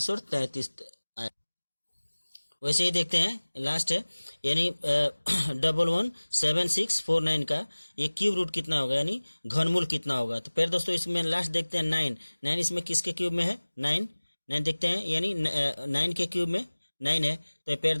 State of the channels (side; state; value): both; inverted; correlation -1.00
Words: 33 आया। वैसे ही देखते हैं लास्ट है, यानी 117649 का ये क्यूब रूट कितना होगा, यानी घनमूल कितना होगा। तो प्यारे दोस्तों इसमें लास्ट देखते हैं 9 इसमें किसके क्यूब में है, 9 देखते हैं, यानी 9 के क्यूब में 9 है। तो प्यारे